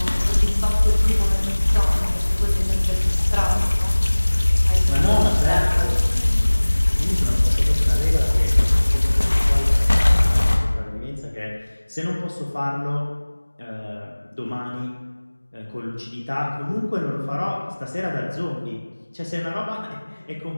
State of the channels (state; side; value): inverted; both; correlation -1.00